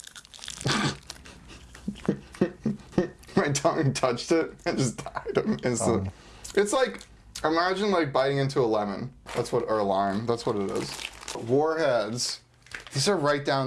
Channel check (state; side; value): identical; both; correlation 1.00